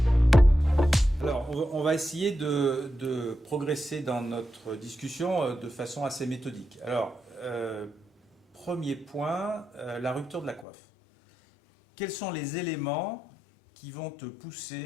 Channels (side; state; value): right; drops out; at 10.7 s